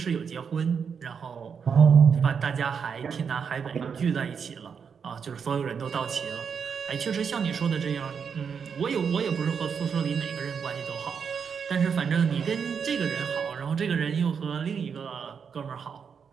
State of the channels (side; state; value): left; quieter; 6.6 dB